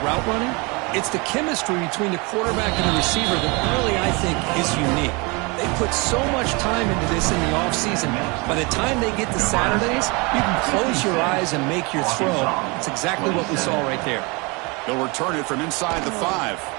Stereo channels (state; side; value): quieter; left; 28.1 dB